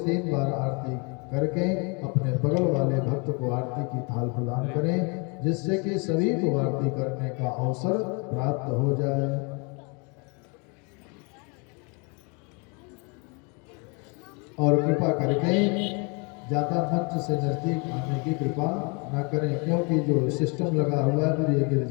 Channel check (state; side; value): quieter; right; 32.6 dB